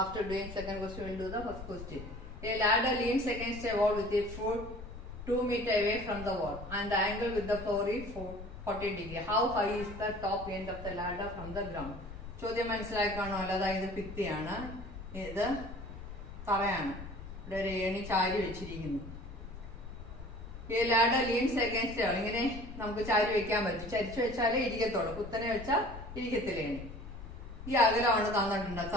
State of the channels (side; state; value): left; noise; rumble, 12 dB below the sound